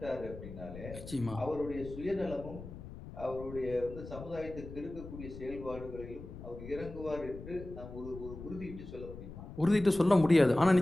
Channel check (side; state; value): left; noise; rumble, 12 dB below the sound